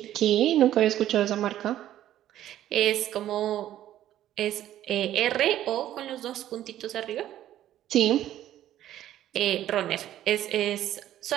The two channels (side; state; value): left; quieter; 12.4 dB